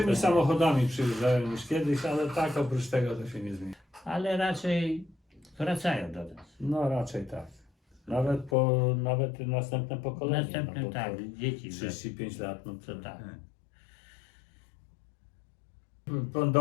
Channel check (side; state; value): right; drops out; at 8.6 s